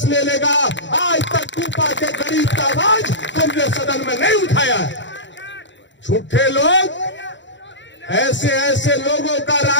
ले लेगा। आज तक कूपा के गरीब का आवाज तुमने सदन में नहीं उठाया। झूठे लोग, ऐसे ऐसे लोगों का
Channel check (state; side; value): late; right; 0.53 ms